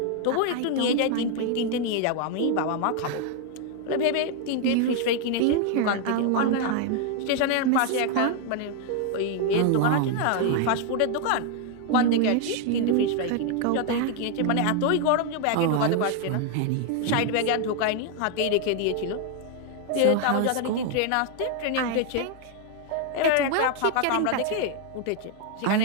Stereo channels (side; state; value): both; different; correlation 0.00